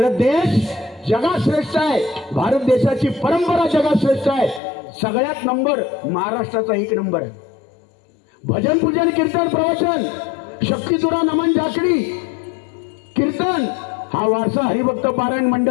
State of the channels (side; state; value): right; drops out; at 4.6 s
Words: देश जगात श्रेष्ठ आहे. भारत देशाची परंपरा जगात श्रेष्ठ आहे. सगळ्यात नंबर महाराष्ट्राचा 1 नंबर आहे. भजन, पूजन, कीर्तन, प्रवचन, शक्तितुरा, नमन, जाकडी, कीर्तन हा वारसा हरिभक्त पारायण